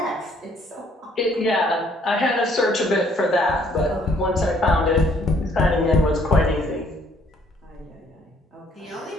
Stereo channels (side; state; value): both; normal; correlation 0.63